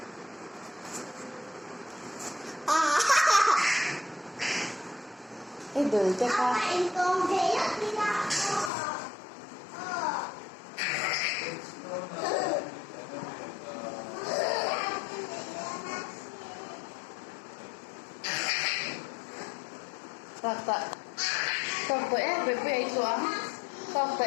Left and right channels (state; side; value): drops out; right; at 8.7 s